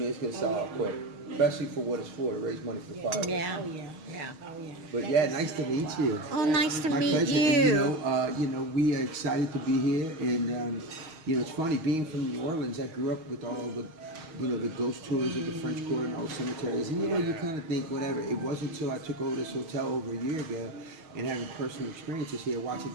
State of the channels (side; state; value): left; late; 6.4 ms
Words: it's going to sell out quick, especially for what it's for, to raise money for fire. Yeah. Oh yeah. Yeah. Oh yeah. But yeah, nice to meet you. Oh, nice to My meet pleasure. you. And, you know, we are excited to be here, and you know, it's funny being from New Orleans. I grew up with all the, you know, the ghost tours of the French Quarter and all the cemeteries, and you know, you kind of think whatever. It wasn't until I took over this hotel over a year ago and having personal experiences here, watching